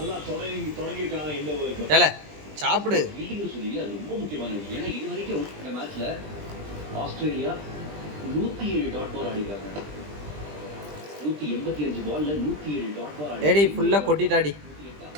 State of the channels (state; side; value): late; left; 20 ms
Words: சாப்பிடு. ரொம்ப முக்கியமான விஷயம். ஏன்னா இது வரைக்கும் இந்த மேட்ச்ல ஆஸ்திரேலியா 107 டாட் பால் ஆடிருக்காங்க. 185 பால்ல 107 டாட் பால் ஆடி. ஏடி ஃபுல்லா கொட்டிட்டாடி.